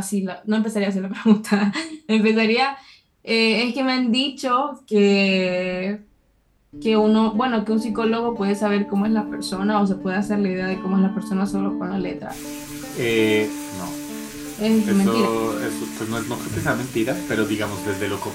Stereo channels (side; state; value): both; identical; correlation 1.00